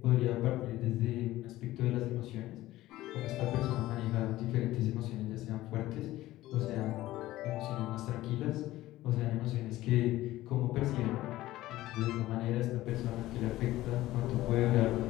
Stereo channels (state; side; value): quieter; right; 16.2 dB